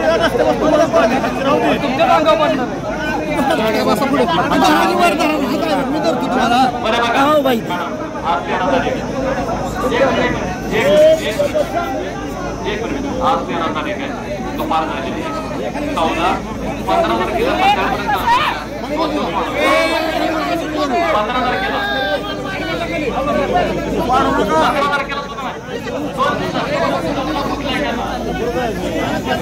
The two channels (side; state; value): both; identical; correlation 1.00